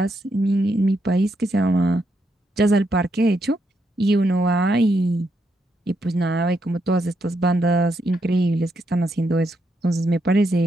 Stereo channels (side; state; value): both; normal; correlation 0.79